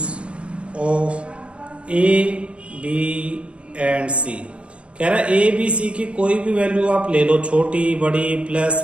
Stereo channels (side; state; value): left; late; 0.060 ms